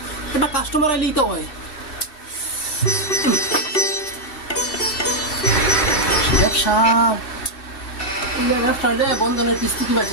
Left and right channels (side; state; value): right; late; 2.7 ms